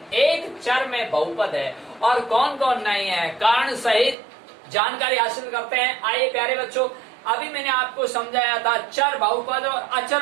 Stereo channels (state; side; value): drops out; left; at 4.2 s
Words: एक चर में बहुपद है और कौन कौन नहीं है? कारण सहित जानकारी हासिल करते हैं। आइए प्यारे बच्चों, अभी मैंने आपको समझाया था चर बहुपद और